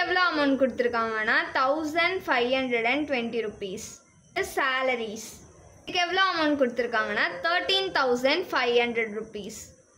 எவ்வளோ அமௌண்ட் கொடுத்துருக்காங்கன்னா 1520 rupees. சேலரிஸ் இதுக்கு எவ்வளோ அமௌண்ட் கொடுத்துருக்காங்கன்னா 13500 rupees.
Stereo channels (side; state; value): both; identical; correlation 1.00